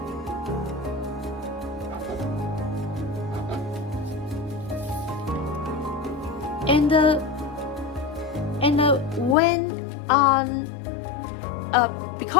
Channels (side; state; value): right; drops out; at 9.3 s